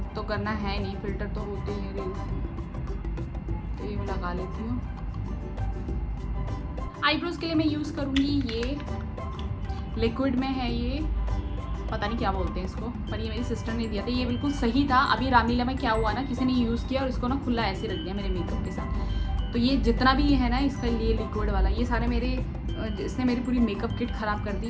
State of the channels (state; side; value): identical; both; correlation 1.00